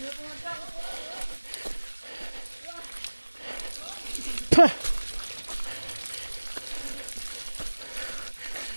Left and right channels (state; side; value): inverted; both; correlation -1.00